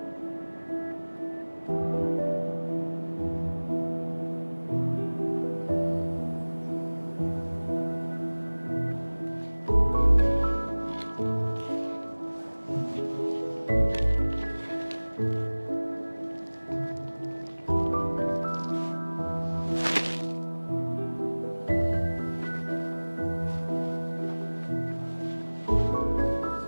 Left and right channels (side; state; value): both; inverted; correlation -1.00